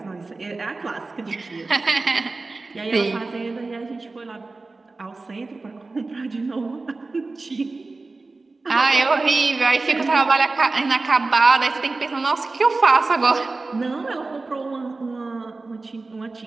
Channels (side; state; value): left; quieter; 3.6 dB